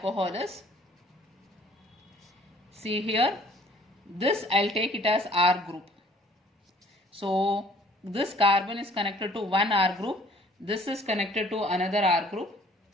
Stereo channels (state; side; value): normal; both; correlation 0.56